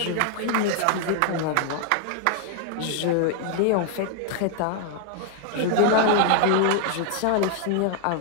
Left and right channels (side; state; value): both; different; correlation 0.00